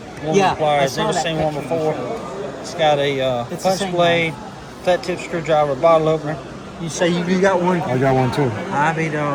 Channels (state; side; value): identical; both; correlation 1.00